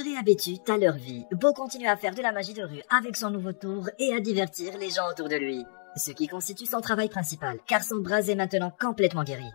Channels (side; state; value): right; silent; digital silence